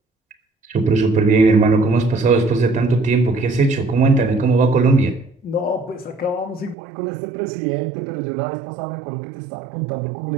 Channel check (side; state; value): left; drops out; at 6.8 s